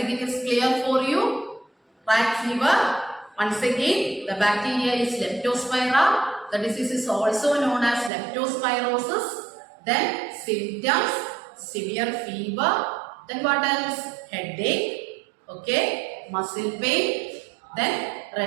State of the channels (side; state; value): left; drops out; at 8.1 s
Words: it is clear for you. Rat fever, once again, the bacteria is Leptospira. The disease is also known as leptospirosis. Then symptoms, severe fever. Then what else? Headache, okay, muscle pain, then